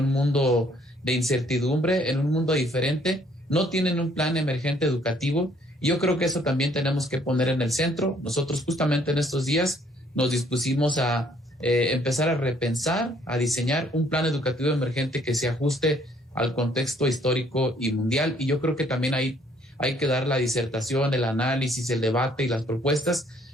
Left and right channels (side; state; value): both; normal; correlation 0.63